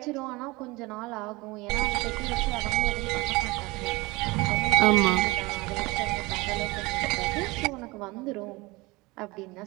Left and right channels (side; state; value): left; quieter; 23.0 dB